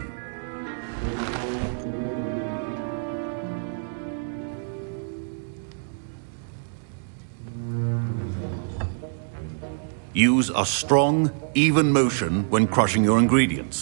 Use a strong, even motion when crushing your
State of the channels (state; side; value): silent; left; digital silence